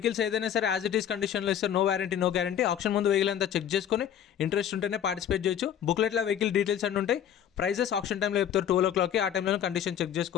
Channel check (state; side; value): quieter; right; 9.5 dB